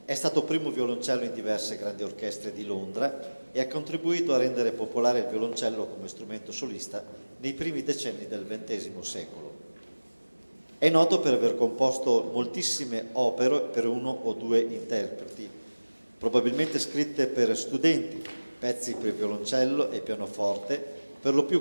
È stato primo violoncello in diverse grandi orchestre di Londra e ha contribuito a rendere popolare il violoncello come strumento solista nei primi decenni del XX secolo. È noto per aver composto moltissime opere per uno o due interpreti, probabilmente scritte per studenti, pezzi per violoncello e pianoforte, per lo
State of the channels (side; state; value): both; inverted; correlation -1.00